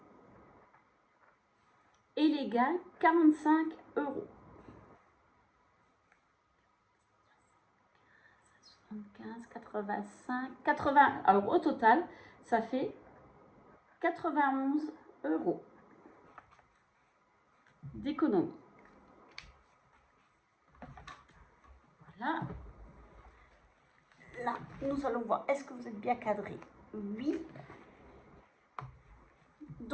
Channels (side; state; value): both; identical; correlation 1.00